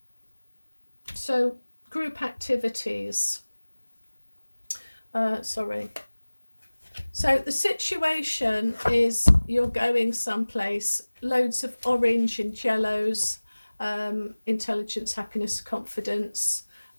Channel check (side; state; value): both; inverted; correlation -1.00